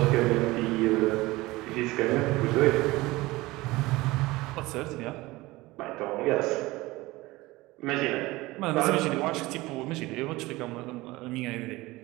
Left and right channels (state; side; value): quieter; left; 20.3 dB